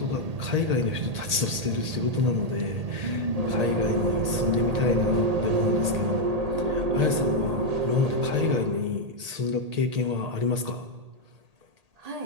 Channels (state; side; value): late; left; 1.8 ms